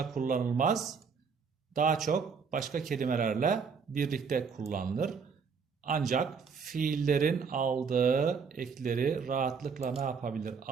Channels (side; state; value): left; quieter; 5.7 dB